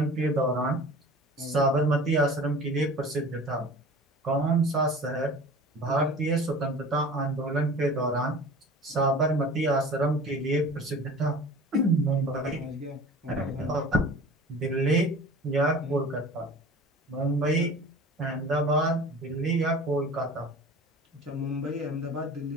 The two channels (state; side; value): normal; both; correlation 0.40